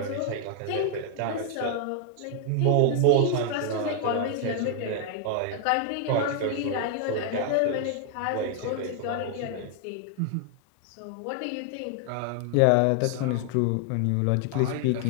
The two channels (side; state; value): both; different; correlation 0.00